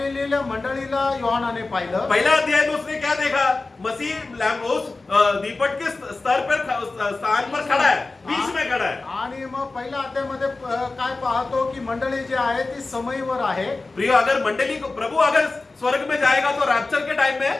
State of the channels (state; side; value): quieter; right; 3.5 dB